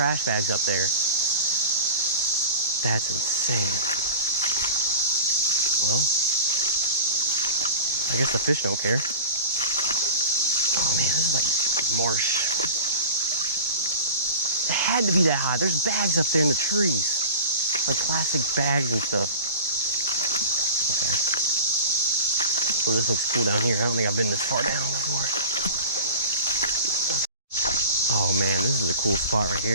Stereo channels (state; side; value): inverted; both; correlation -0.35